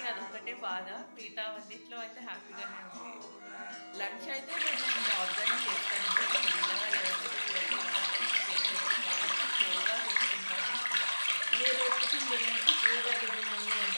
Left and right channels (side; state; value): both; inverted; correlation -1.00